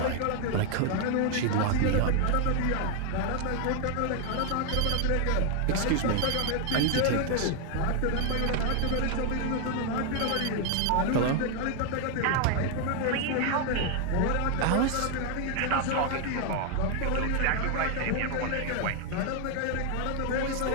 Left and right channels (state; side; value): different; both; correlation 0.00